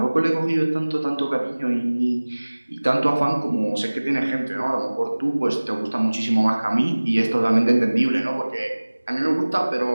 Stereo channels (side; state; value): both; inverted; correlation -1.00